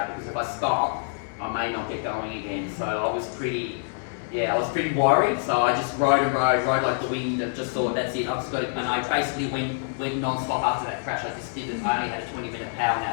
because if I stop, I may not get going again. So I was pretty worried. So I just rode like the wind, and just thought, that's it. I've just got to, and I basically went non-stop after that crash. I only had a 20-minute power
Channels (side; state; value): right; silent; 60 dB below the other